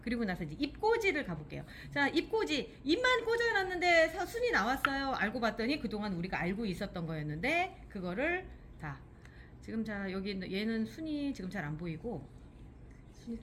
그리고 나서 이제 입꽂이를 가볼게요. 자, 입꽂이. 입만 꽂아놨는데 순이 나왔어요. 알고 봤더니 그동안 우리가 알고 있었던 거였는데 그거를 다 지금 자 여기 얘는 순이 지금 잘 안 보이고 순이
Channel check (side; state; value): both; identical; correlation 1.00